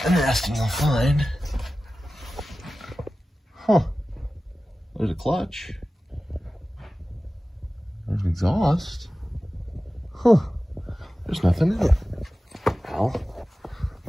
interesting you'll find. Huh, there's a clutch. There's an exhaust. Huh, there's nothing in it. Well,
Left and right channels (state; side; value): normal; both; correlation 0.95